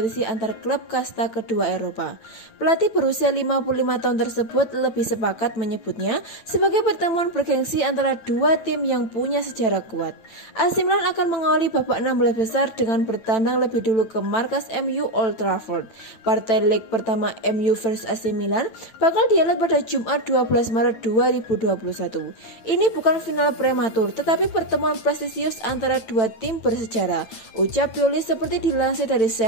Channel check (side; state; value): right; late; 9.0 ms